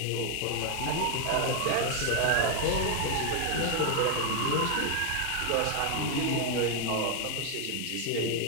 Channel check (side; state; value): both; different; correlation 0.00